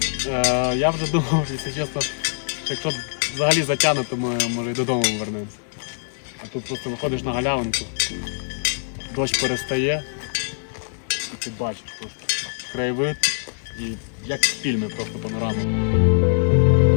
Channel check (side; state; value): right; silent; digital silence